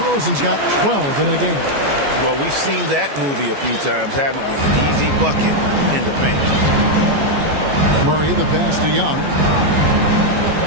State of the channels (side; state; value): left; late; 14 ms